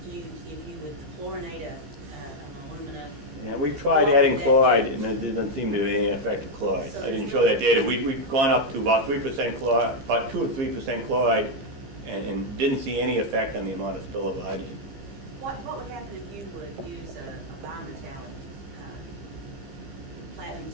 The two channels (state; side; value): late; left; 15 ms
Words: If you would chlorinate an alumina? Yeah, we've tried adding chloride, and there doesn't seem to be any effect of chloride. I didn't show that data. We've gone up to about 3% chloride, about 2 or 3% chloride, and didn't see any effect on the amount of spillover hydrogen. What would happen if you would use a bimetallic platinum